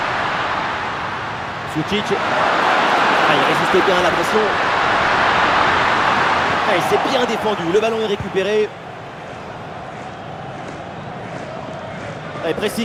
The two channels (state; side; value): identical; both; correlation 1.00